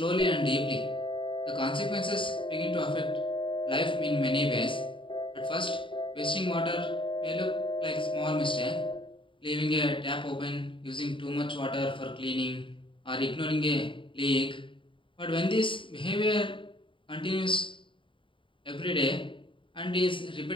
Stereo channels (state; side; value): late; right; 0.25 ms